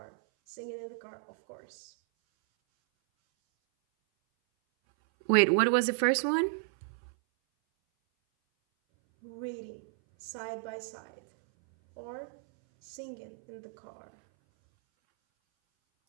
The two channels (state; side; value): silent; left; 56 dB below the other